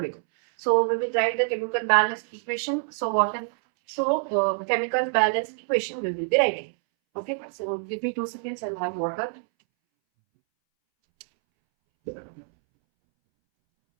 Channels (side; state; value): left; silent; 61 dB below the other